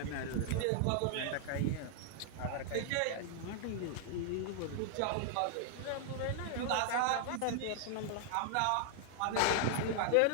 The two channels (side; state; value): both; different; correlation 0.00